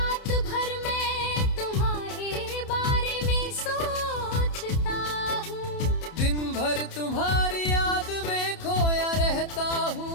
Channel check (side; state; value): right; late; 30 ms